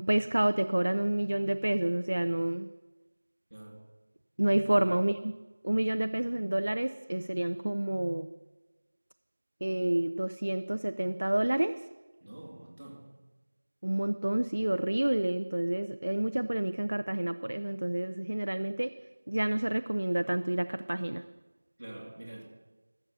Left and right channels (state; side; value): inverted; both; correlation -1.00